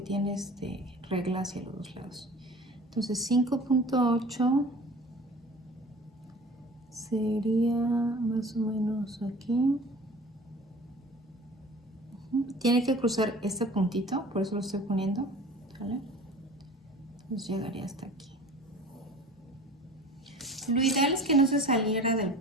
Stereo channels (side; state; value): both; normal; correlation 0.43